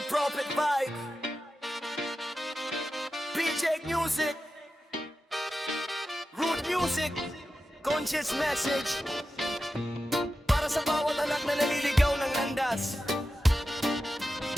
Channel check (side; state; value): both; normal; correlation 0.92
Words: Prophet Vibe, PJ Music, Root Music, Conscious Message. Para sa bawat anak na naliligaw ng landas,